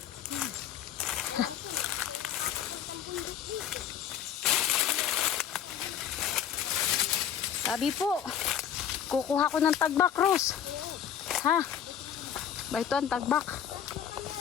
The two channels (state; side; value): quieter; right; 9.1 dB